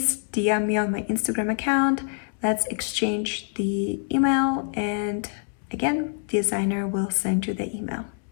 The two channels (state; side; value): silent; right; 61 dB below the other